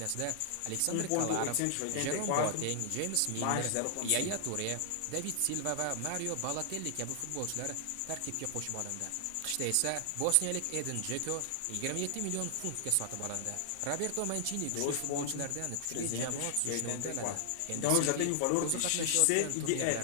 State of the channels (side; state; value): both; different; correlation 0.00